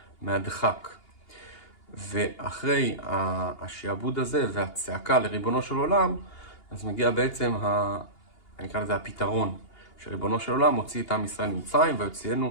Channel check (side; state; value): right; late; 2.8 ms